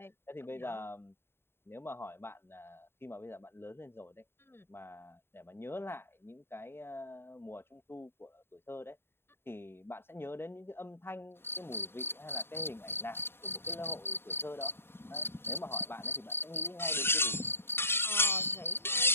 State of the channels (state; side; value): late; right; 0.11 ms